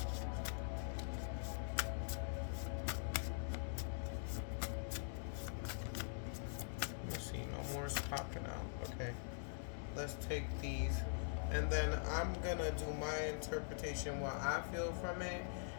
Let's see, no more is popping out. Okay. Let's take these. And then I'm gonna do my interpretation, what I feel from it,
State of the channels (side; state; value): right; silent; digital silence